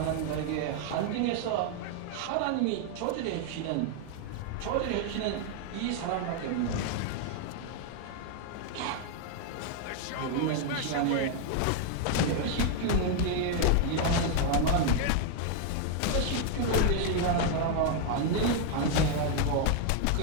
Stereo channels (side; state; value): both; different; correlation 0.00